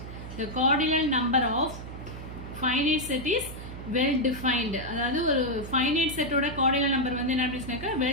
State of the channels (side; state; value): right; noise; hum, 11 dB below the sound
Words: The cardinal number of finite set is well defined. அதாவது ஒரு ஃபைனைட் செட்டோட கார்டினல் நம்பர் வந்து என்ன அப்படின்னாக்கா